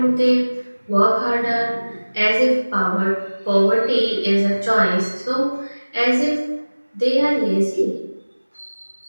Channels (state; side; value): inverted; both; correlation -1.00